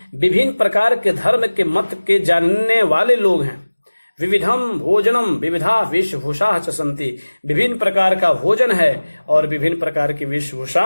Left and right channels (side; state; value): both; inverted; correlation -1.00